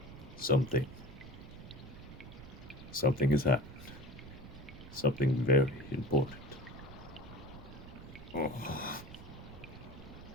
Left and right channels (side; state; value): right; noise; rumble, 14 dB below the sound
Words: Something, something has happened. Something very important. Oh,